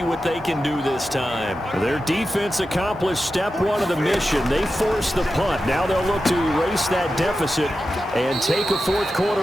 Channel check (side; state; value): both; normal; correlation 0.91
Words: what they can do this time. Their defense accomplished step one of the mission. They forced the punt. Now they'll look to erase that deficit and take a fourth